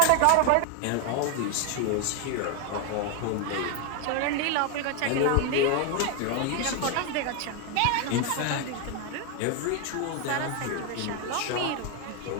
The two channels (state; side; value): different; both; correlation 0.01